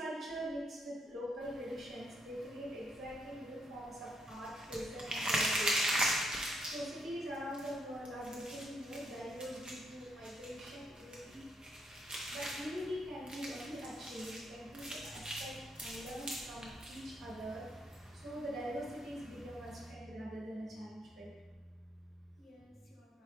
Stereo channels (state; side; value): normal; both; correlation 0.75